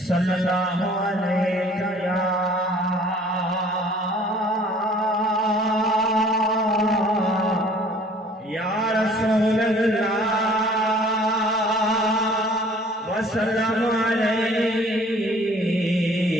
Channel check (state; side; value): normal; both; correlation 0.53